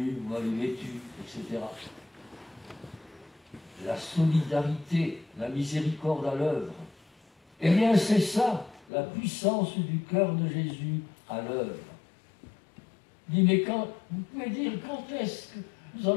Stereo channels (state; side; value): drops out; right; at 8.8 s